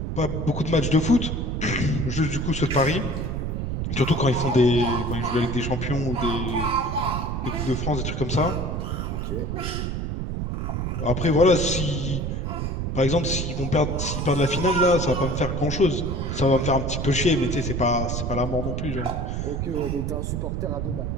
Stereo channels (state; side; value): noise; right; rumble, 2 dB below the sound